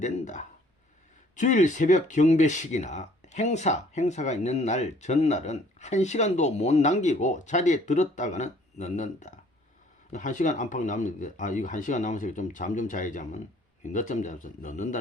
주일 새벽 경배식이나 행사가 있는 날 전날은 1시간도 못 남기고 자리에 들었다가는 넣는다. 1시간 안팎 남는데 이거 1시간 남아서 좀 잠 좀 자야지 하면 늦잠 자면서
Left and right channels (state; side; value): normal; both; correlation 0.58